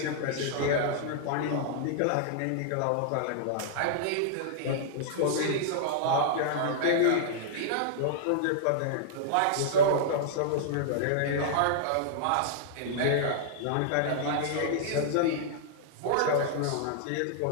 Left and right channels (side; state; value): both; different; correlation -0.01